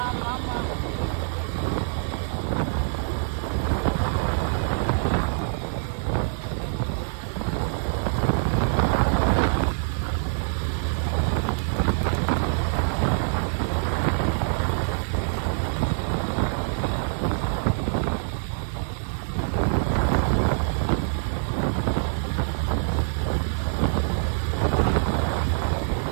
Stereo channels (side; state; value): left; silent; 62 dB below the other